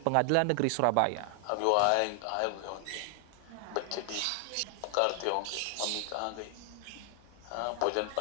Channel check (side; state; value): both; different; correlation 0.00